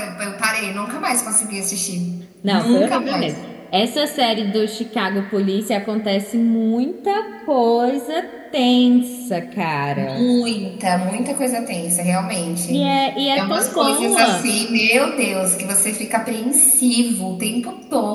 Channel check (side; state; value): both; identical; correlation 1.00